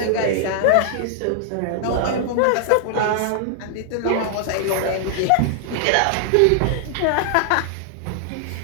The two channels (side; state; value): both; different; correlation 0.00